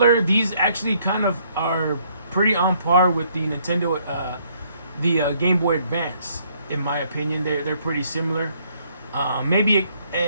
These actually kind of are pretty on par with the Nintendo, the Game Boy Advance, in my opinion. They're pretty similar. Maybe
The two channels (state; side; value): inverted; both; correlation -0.67